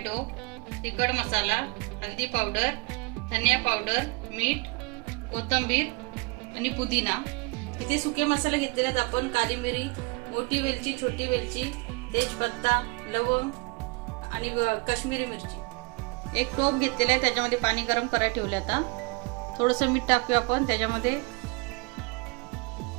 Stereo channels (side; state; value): left; quieter; 29.1 dB